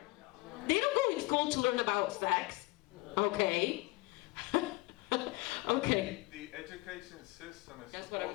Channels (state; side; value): quieter; right; 23.2 dB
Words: They don't go in school to learn about sex. Okay? Okay. The education system is That's what I